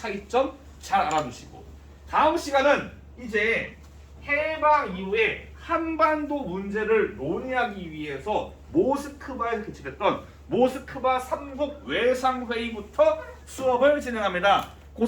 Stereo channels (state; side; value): identical; both; correlation 1.00